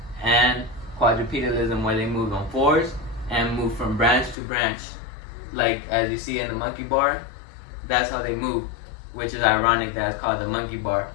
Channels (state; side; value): drops out; right; at 4.4 s